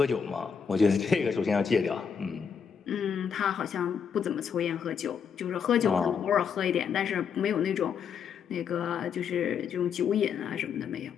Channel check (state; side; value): quieter; right; 6.8 dB